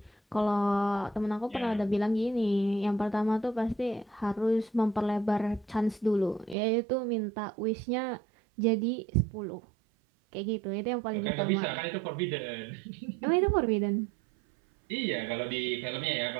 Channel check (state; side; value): drops out; left; at 6.6 s